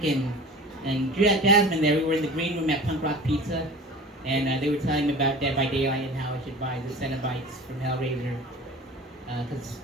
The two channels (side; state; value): both; normal; correlation 0.38